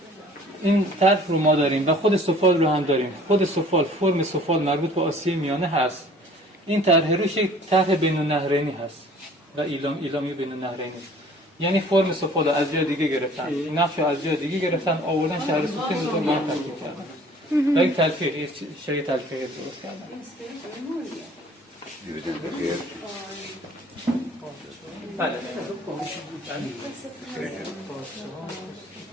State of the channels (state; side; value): normal; both; correlation 0.51